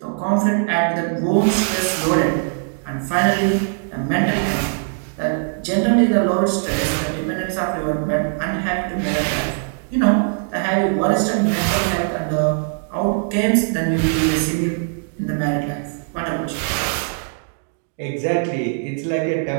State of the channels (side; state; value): left; silent; digital silence